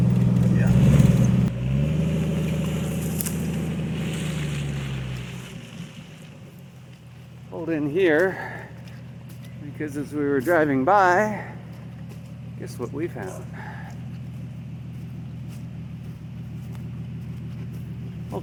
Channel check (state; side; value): identical; both; correlation 1.00